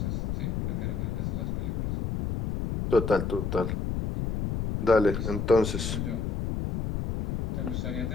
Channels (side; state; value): left; noise; rumble, 2 dB below the sound